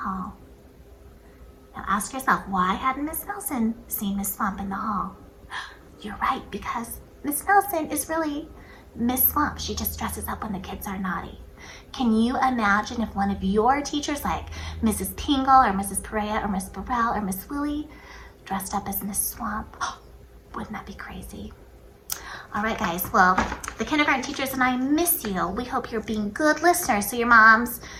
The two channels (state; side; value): identical; both; correlation 1.00